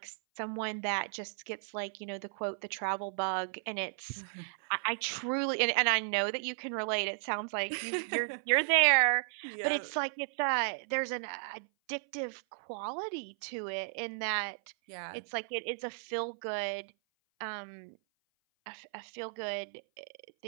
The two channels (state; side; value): silent; left; 55 dB below the other